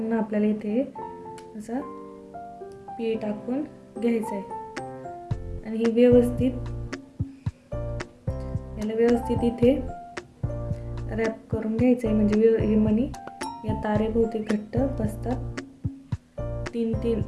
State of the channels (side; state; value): both; identical; correlation 1.00